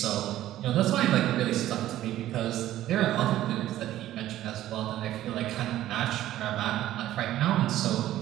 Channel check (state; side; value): quieter; left; 13.6 dB